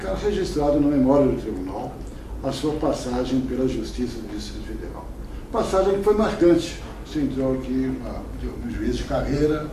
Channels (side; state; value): both; identical; correlation 1.00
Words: registrado na memória do tribunal a sua passagem pela Justiça do Distrito Federal. Passagem que foi marcante. Você entrou aqui no juiz de carreira,